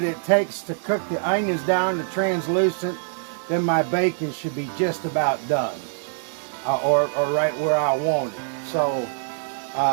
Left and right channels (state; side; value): silent; left; 63 dB below the other